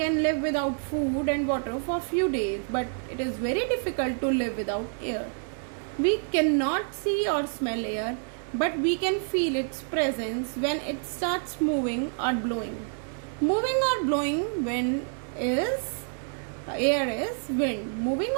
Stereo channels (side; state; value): left; silent; 59 dB below the other